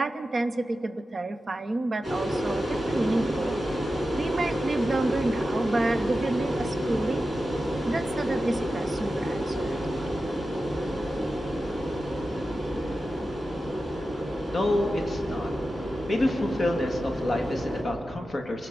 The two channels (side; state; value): both; normal; correlation 0.92